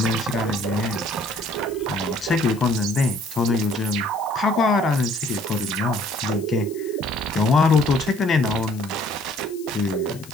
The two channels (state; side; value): noise; left; hiss, 20 dB below the sound